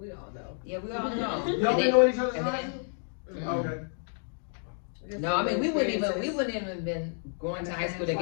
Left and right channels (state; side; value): silent; right; 58 dB below the other